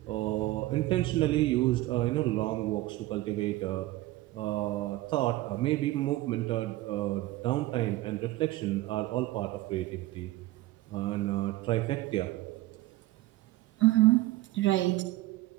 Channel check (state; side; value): quieter; left; 17.5 dB